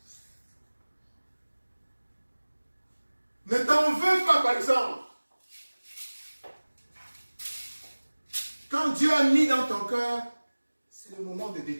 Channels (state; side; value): inverted; both; correlation -1.00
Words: Ne t'en veux pas, par exemple. Quand Dieu a mis dans ton cœur, c'est le moment de